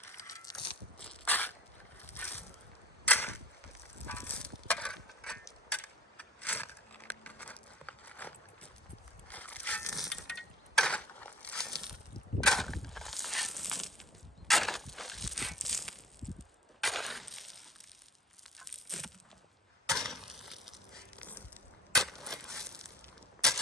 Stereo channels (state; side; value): normal; both; correlation 0.43